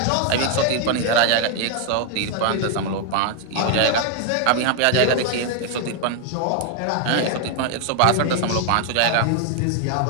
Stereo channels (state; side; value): different; both; correlation 0.00